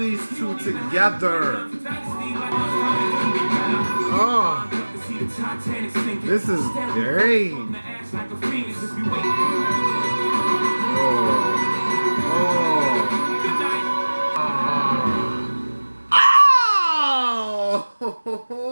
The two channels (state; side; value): inverted; both; correlation -1.00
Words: two together. Oh, this is great. Oh,